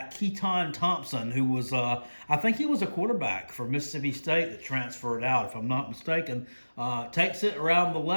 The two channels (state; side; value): inverted; both; correlation -1.00